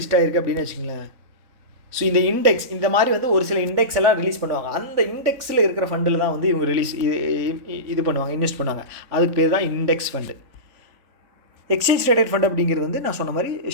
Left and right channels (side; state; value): left; late; 3.6 ms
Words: ஆகிருக்கு அப்படின்னு வச்சுக்கோங்களேன். ஸோ இந்த இண்டெக்ஸ் இந்த மாதிரி வந்து ஒரு சில இண்டெக்ஸ் எல்லாம் ரிலீஸ் பண்ணுவாங்க. அந்த இண்டெக்ஸில் இருக்கிற ஃபண்டில் தான் வந்து இவங்க இது பண்ணுவாங்க, இன்வெஸ்ட் பண்ணுவாங்க. அதுக்கு பேர் தான் index fund. Exchange traded fund அப்படிங்கிறது வந்து நான் சொன்ன மாதிரி